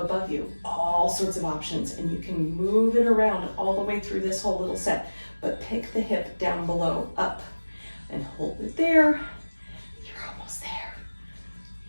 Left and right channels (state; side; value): inverted; both; correlation -1.00